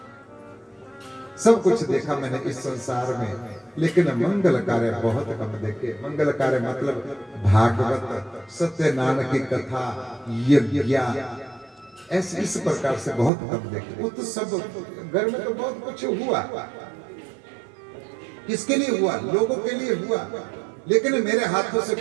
सब कुछ देखा मैंने इस संसार में, लेकिन मंगल कार्य बहुत कम देखे। मंगल कार्य मतलब भागवत, सत्यनारायण की कथा, यज्ञ, ऐसे इस प्रकार से बहुत कम देखे। वो तो सब घर में तो बहुत कुछ हुआ, किसके लिए हुआ? लोगों के लिए हुआ, लेकिन मेरे हाथों से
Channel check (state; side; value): drops out; left; at 13.3 s